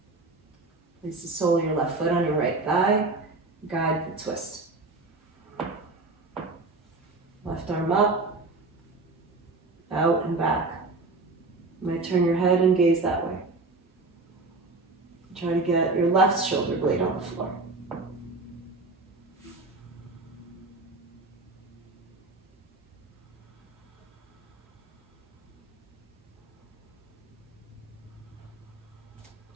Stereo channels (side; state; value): left; quieter; 3.4 dB